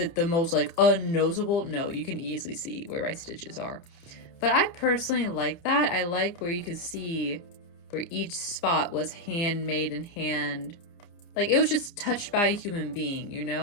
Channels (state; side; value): late; right; 29 ms